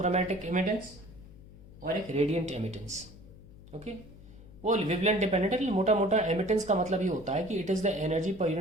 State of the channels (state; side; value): noise; left; hum, 20 dB below the sound